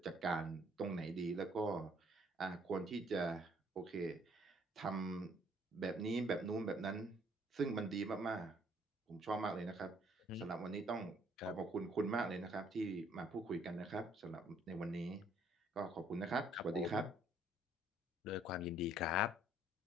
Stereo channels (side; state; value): both; normal; correlation 0.63